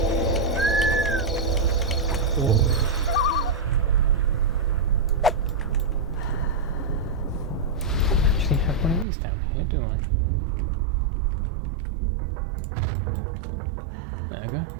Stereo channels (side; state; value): left; drops out; at 9.1 s